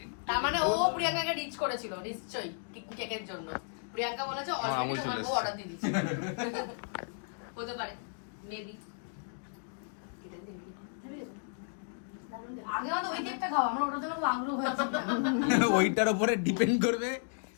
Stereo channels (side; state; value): right; silent; digital silence